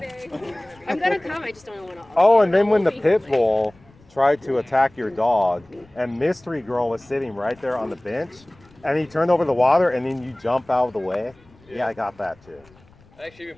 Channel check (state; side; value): noise; left; rumble, 28 dB below the sound